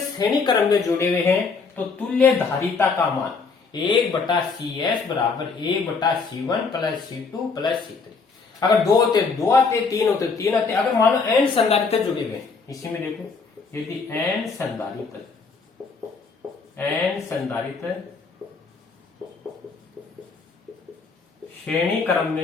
क्रम में जुड़े हुए हैं तो तुल्य धारिता का मान 1/CS बराबर 1/C1 plus C2 plus C3। अगर 2 होते 2 आते, 3 होते 3 आते। अगर मान लो n संधारित्र जुड़े हुए, इसी में देखो यदि n संधारित्र श्रेणी क्रम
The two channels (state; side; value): quieter; right; 4.7 dB